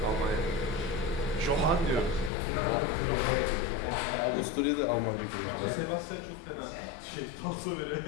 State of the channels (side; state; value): right; drops out; at 2.3 s